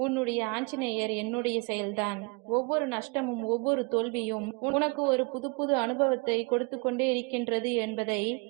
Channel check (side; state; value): left; quieter; 31.0 dB